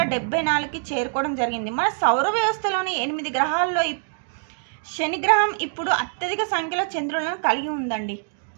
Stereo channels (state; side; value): silent; left; 63 dB below the other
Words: చేరుకోవడం జరిగింది. మన సౌర వ్యవస్థలోని 8 గ్రహాల్లో శని గ్రహం ఇప్పుడు అత్యధిక సంఖ్యలో చంద్రులను కలిగి ఉందండి.